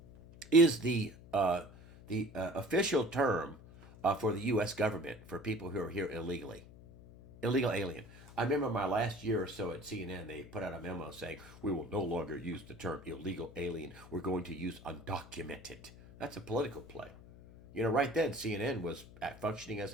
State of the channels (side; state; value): left; noise; hum, 19 dB below the sound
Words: is the official term for the U.S. government for people who are here illegally. Illegal alien. I remember my last year or so at CNN, they put out a memo saying, we will no longer use the term illegal alien. We're going to use undocumented. That's a political play. You know, right then, CNN was functioning